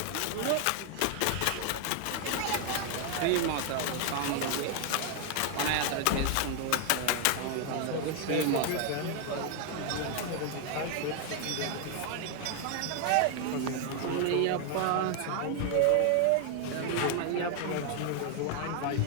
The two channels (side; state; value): both; different; correlation 0.00